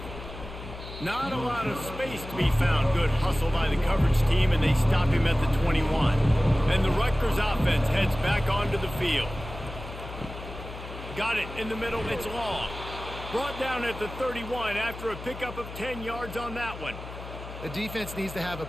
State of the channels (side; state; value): left; noise; hum, 12 dB below the sound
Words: Not a lot of space to be found. Good hustle by the coverage team, and they stop him at the 21. And the Rutgers offense heads back onto the field. Got it in the middle. It's long. Brought down at the 31 after a pickup of 10 yards on that one. The defense needs to have a